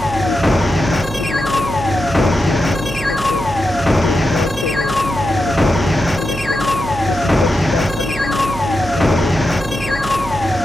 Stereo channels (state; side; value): noise; right; hum, 11 dB below the sound